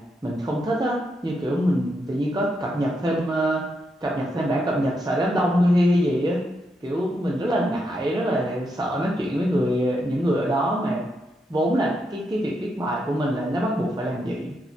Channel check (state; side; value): normal; both; correlation 0.81